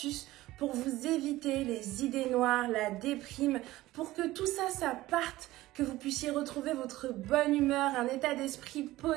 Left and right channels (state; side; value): quieter; left; 17.1 dB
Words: pour vous éviter les idées noires, la déprime, pour que tout ça parte, que vous puissiez retrouver votre bonne humeur, un état d'esprit